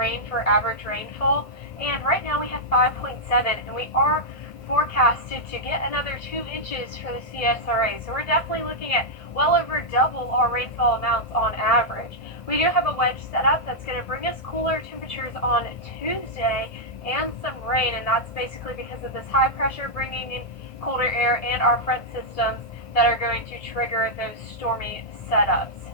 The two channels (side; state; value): right; late; 1.8 ms